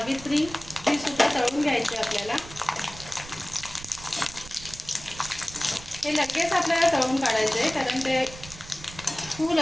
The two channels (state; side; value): noise; right; rumble, 16 dB below the sound